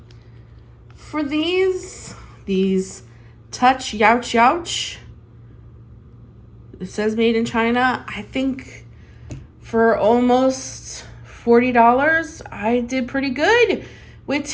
for these Touch Youch Youch. It says made in China. I think for almost $40, I did pretty good with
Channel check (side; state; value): both; identical; correlation 1.00